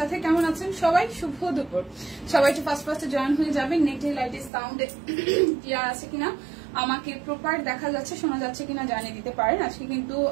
কেমন আছেন সবাই? শুভ দুপুর। সবাই একটু ফার্স্টে জয়েন হয়ে যাবেন। নেটে লাইটে সাউন্ডে ক্লিয়ার আছে কিনা, আমাকে প্রপার দেখা যাচ্ছে, শোনা যাচ্ছে কিনা জানিয়ে দিতে পারেন। আজকে কিন্তু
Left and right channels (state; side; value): drops out; left; at 4.5 s